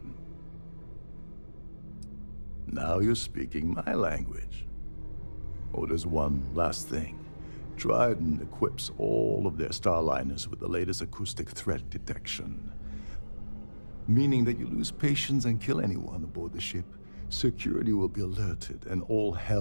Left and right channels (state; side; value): inverted; both; correlation -1.00